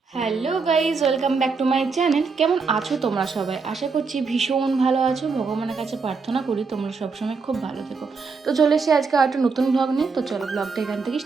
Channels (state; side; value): quieter; left; 4.8 dB